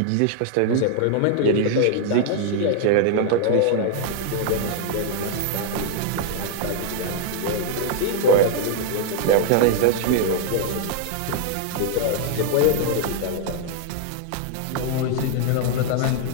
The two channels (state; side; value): different; both; correlation 0.00